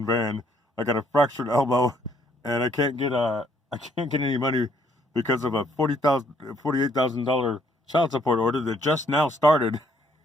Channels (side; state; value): both; normal; correlation 0.66